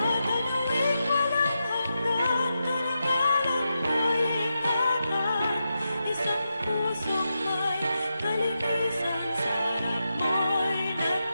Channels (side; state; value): both; inverted; correlation -0.88